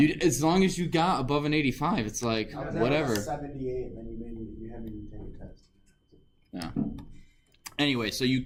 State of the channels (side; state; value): both; identical; correlation 1.00